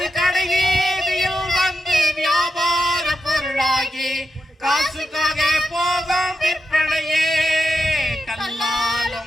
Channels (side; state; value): both; normal; correlation 0.87